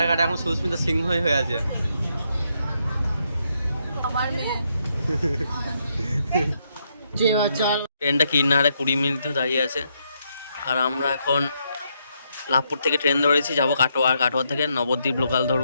কার্ডে এখন সুস্মিতা সিংহ হয়ে আছে। আমার মেয়ে ট্রেনটা কিনারে 20 মিনিট দাঁড়িয়ে আছে। আর আমরা এখন লাভপুর থেকে ট্রেন ধরেছি, যাবো কাটোয়া। আর কাটোয়া থেকে নবদ্বীপ লোকাল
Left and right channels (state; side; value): inverted; both; correlation -0.78